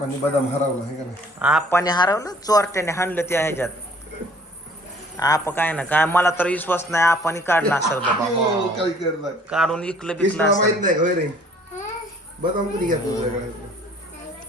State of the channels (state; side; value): normal; both; correlation 0.55